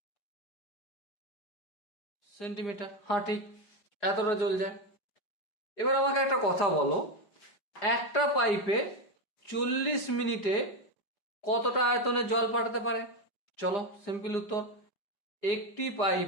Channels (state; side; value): late; right; 4.9 ms